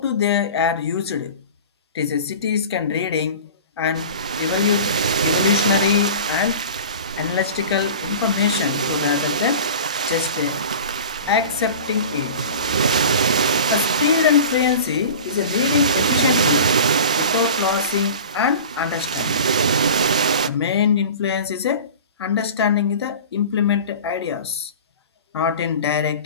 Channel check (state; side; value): inverted; both; correlation -0.36